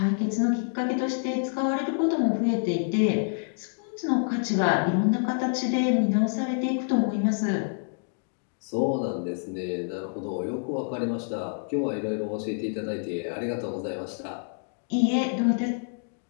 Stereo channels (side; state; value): right; silent; digital silence